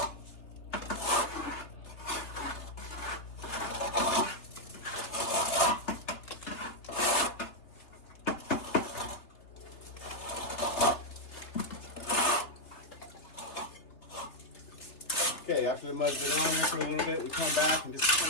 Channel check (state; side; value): late; right; 3.6 ms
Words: Okay, after the mud's been on there for a little bit, we come back and just